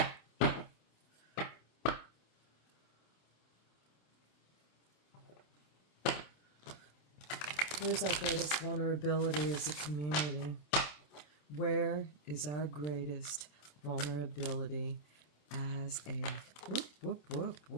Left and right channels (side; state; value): right; late; 27 ms